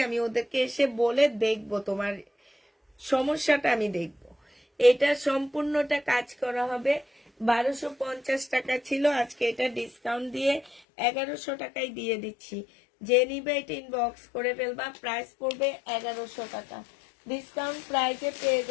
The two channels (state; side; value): drops out; right; at 10.8 s